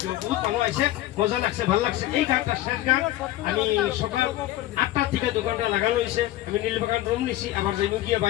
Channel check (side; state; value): right; quieter; 15.0 dB